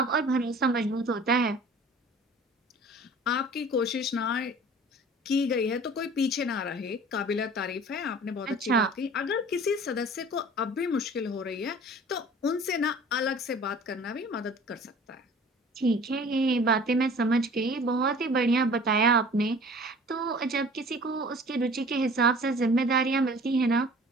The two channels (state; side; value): normal; both; correlation 0.46